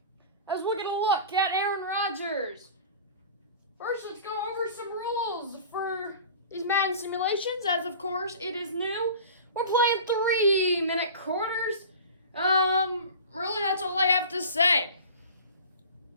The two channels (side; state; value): both; inverted; correlation -0.39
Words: as we're going to look at Aaron Rodgers. First, let's go over some rules for these Madden simulations, as of course it is new. We're playing 3-minute quarters. Really, that's all I have to say.